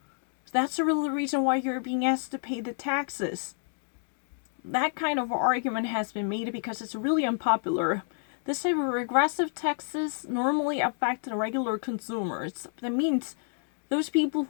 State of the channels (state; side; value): silent; right; 56 dB below the other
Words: That's the real reason why you're being asked to pay the taxes. That kind of argument has been made because it's really unpopular. This type of regressive taxes normally affect the regular consumers. That means those people